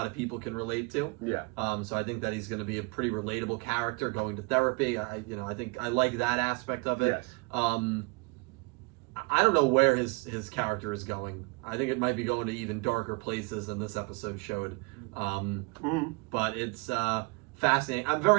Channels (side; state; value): left; quieter; 30.1 dB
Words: of people can relate to. Yeah. So I think that he's going to be a pretty relatable character going to therapy. I think I like that aspect of it. Yes. I don't know where his character is going. I think it might be going to even darker places than this episode showed. But it's fascinating. I'm